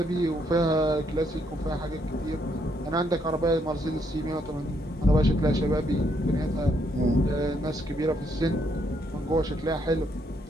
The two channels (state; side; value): normal; both; correlation 0.74